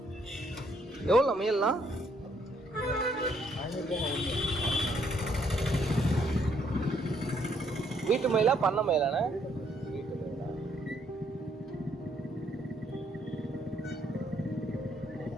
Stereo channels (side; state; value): both; normal; correlation 0.70